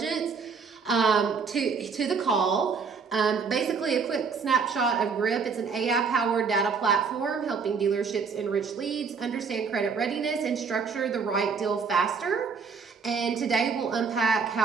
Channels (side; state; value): left; quieter; 5.5 dB